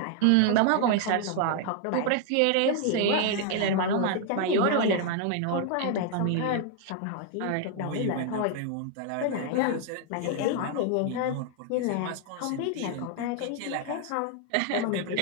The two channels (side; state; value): both; different; correlation 0.00